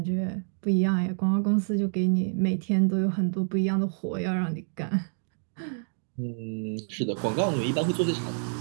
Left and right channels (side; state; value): left; silent; 60 dB below the other